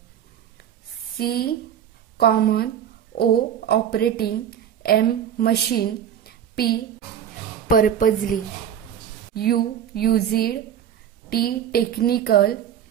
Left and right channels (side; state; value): left; quieter; 9.4 dB